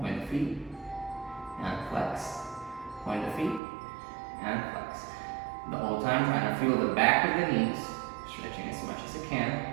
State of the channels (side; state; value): left; drops out; at 3.6 s